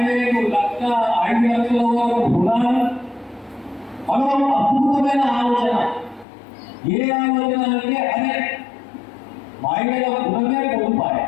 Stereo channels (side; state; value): right; drops out; at 6.2 s